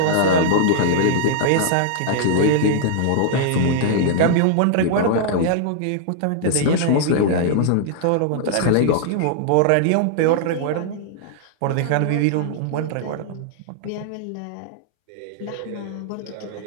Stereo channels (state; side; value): different; both; correlation -0.01